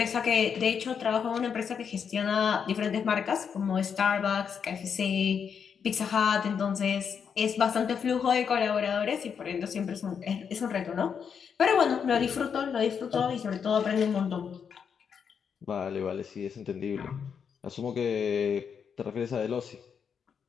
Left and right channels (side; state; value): right; quieter; 7.0 dB